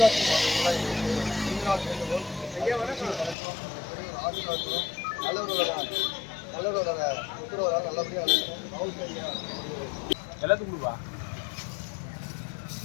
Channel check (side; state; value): right; drops out; at 3.4 s